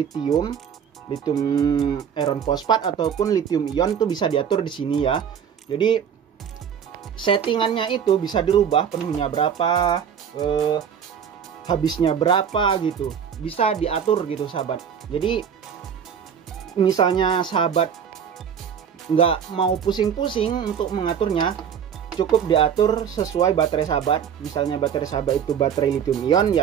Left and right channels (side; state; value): left; quieter; 7.9 dB